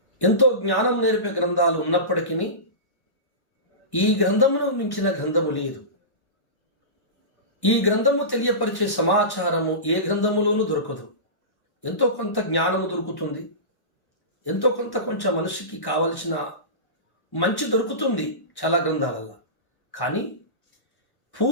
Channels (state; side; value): late; right; 1.1 ms